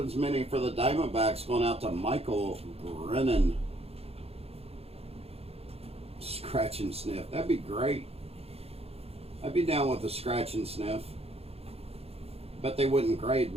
mini for the Diamondbacks, going out to Michael Brennan. Scratch and sniff. That'd be great. I'd be down with the scratch and sniff. Bet they wouldn't grade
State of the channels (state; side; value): late; left; 0.29 ms